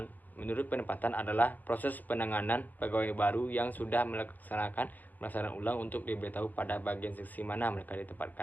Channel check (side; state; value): right; late; 0.083 ms